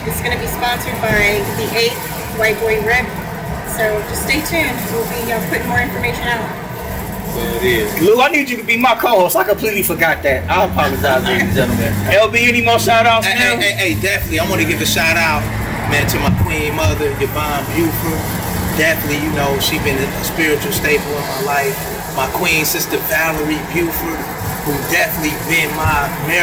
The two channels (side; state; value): both; identical; correlation 1.00